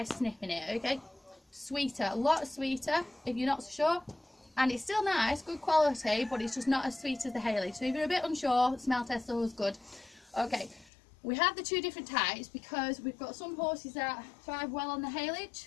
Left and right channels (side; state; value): right; drops out; at 10.9 s